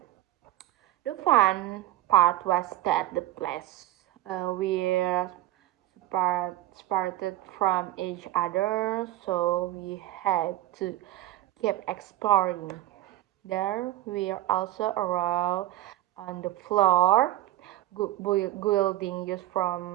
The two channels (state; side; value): quieter; left; 15.0 dB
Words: The fun part was that the place separated from each other, so we had to keep exploring. There we also arrived on the floor, building just